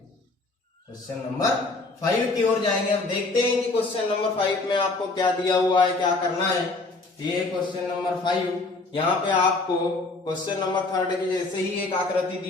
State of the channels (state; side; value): quieter; right; 3.4 dB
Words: क्वेश्चन नंबर 5 की ओर जाएंगे। अब देखते हैं कि क्वेश्चन नंबर 5 में आपको क्या दिया हुआ है, क्या करना है। ये क्वेश्चन नंबर 5, यहाँ पे आपको क्वेश्चन नंबर 3 की जैसे ही एक आकृति